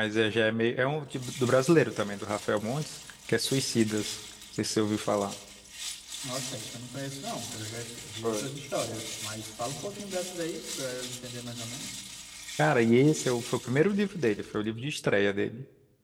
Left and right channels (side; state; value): both; identical; correlation 1.00